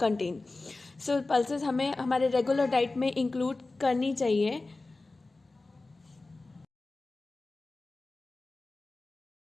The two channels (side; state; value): right; quieter; 3.3 dB